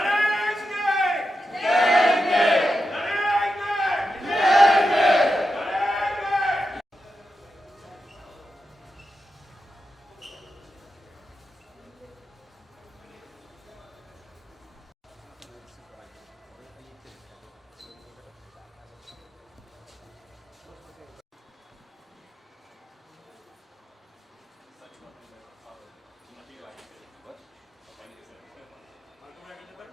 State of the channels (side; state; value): both; normal; correlation 0.89